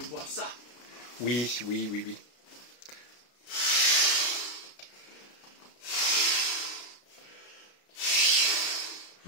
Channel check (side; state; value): right; late; 33 ms